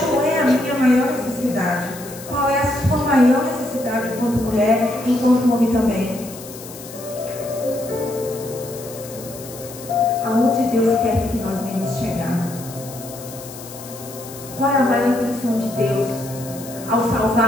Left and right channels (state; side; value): noise; left; hiss, 15 dB below the sound